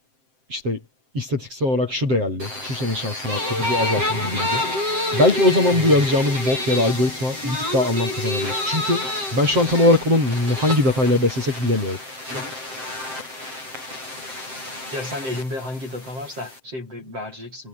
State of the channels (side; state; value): left; late; 7.7 ms